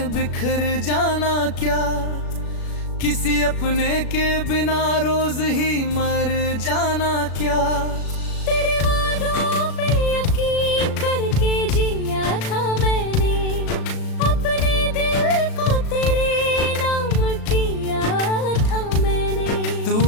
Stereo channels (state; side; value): late; right; 36 ms